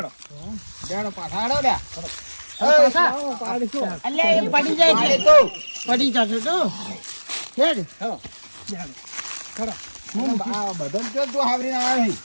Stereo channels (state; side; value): inverted; both; correlation -1.00